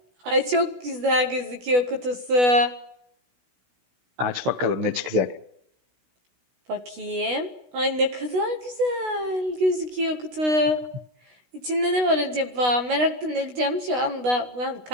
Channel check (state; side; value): late; left; 16 ms